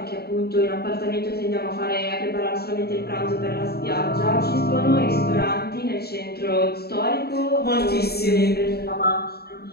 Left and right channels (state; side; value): late; right; 0.46 ms